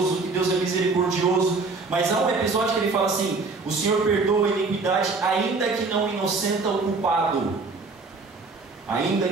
que Deus é misericordioso. Mas há um episódio que ele fala assim: o Senhor perdoa a iniquidade, ainda que não inocenta o culpado. Ainda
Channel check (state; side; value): quieter; left; 4.0 dB